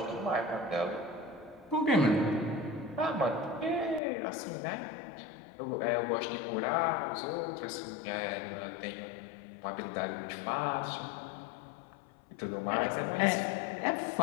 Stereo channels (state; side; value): drops out; right; at 4.0 s